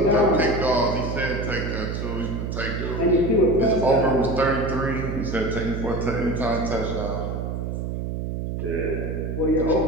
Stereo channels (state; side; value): noise; right; hum, 3 dB below the sound